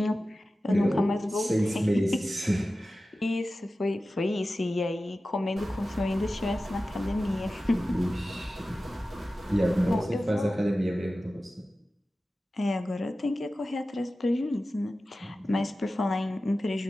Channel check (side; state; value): both; normal; correlation 0.95